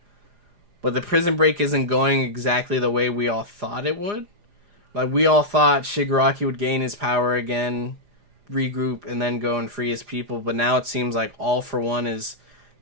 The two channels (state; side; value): late; left; 4.9 ms